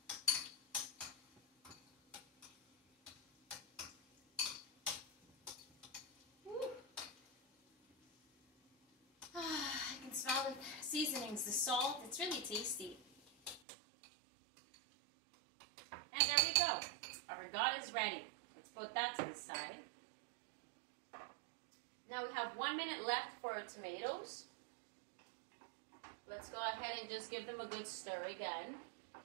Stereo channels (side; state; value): left; drops out; at 13.6 s